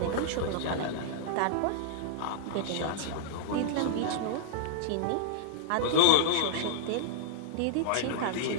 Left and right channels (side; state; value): both; different; correlation -0.02